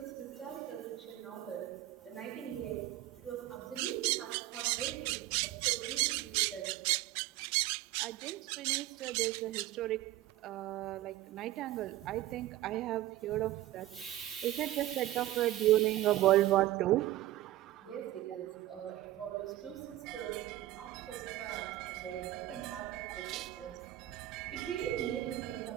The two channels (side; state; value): left; quieter; 14.9 dB